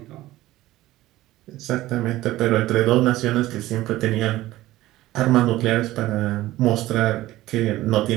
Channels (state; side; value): quieter; left; 16.4 dB